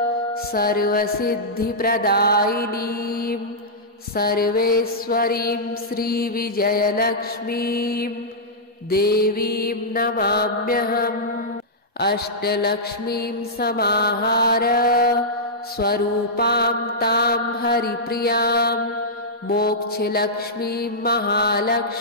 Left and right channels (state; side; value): normal; both; correlation -0.11